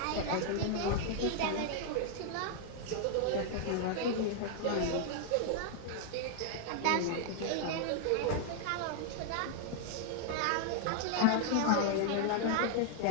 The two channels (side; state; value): both; different; correlation -0.01